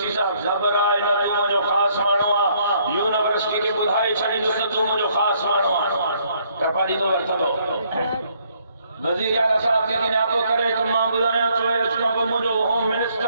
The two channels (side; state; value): both; inverted; correlation -0.68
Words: سی صاحب خبر آئے نہ تو جو خاص مانو آ یونیورسٹی کے بدھائی چھڑی جو تو جو خاص مانو آ کپاڑی دو ورتا دو وزیر اعلیٰ صاحب کے کنے آپ کرے تو ماں بدھایا تو ہے اس کا مجھو ہوم منسٹر